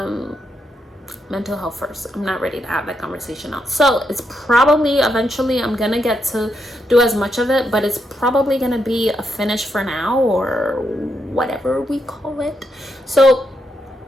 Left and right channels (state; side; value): normal; both; correlation 0.81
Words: Mental health first. I'm not ready to have that conversation now. So it's probably eventually I'm gonna get to do as much of it, but it's probably gonna be a finish for now, or whatever we call it. So